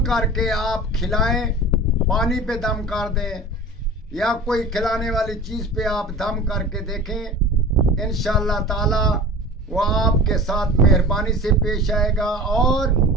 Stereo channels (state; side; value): normal; both; correlation 0.37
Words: کر کے آپ کھلائیں، پانی پہ دم کر دیں یا کوئی کھلانے والی چیز پہ آپ دم کر کے دیکھیں، انشاءاللہ تعالی وہ آپ کے ساتھ مہربانی سے پیش آئے گا اور